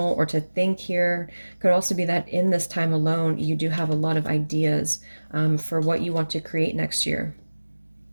or to think here. Could also be that in this time alone, you do have a lot of ideas for what you want to create next year.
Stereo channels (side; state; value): both; inverted; correlation -1.00